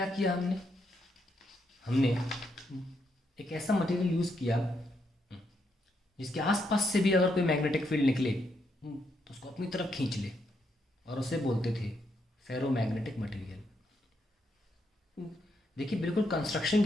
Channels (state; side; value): normal; both; correlation 0.78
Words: किया हमने? हमने एक ऐसा मटेरियल यूज़ किया जिसके आसपास से भी अगर कोई मैग्नेटिक फील्ड निकले तो उसको अपनी तरफ खींच ले, और उसे बोलते थे फेरोमैग्नेटिक मटेरियल। देखिए, बिल्कुल कंस्ट्रक्शन